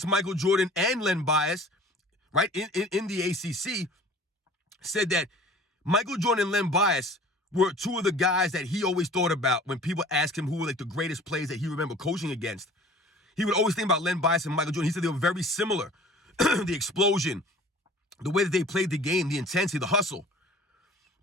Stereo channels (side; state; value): both; normal; correlation 0.46